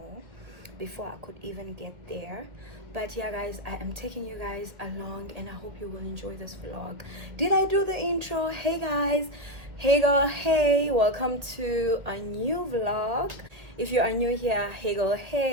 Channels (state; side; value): late; left; 1.6 ms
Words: before I could even get there. But yeah guys, I am taking you guys along, and I hope you will enjoy this vlog. Did I do the intro? Hey guys, hey girl, hey, welcome to a new vlog. If you are new here, hey girl,